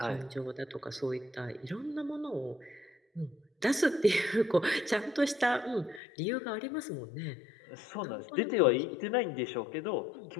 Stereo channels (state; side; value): drops out; right; at 6.0 s